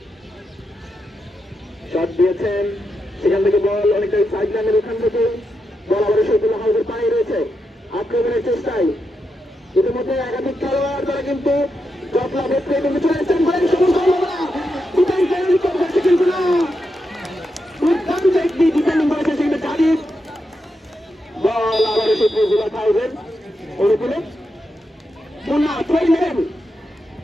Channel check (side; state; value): both; normal; correlation 0.85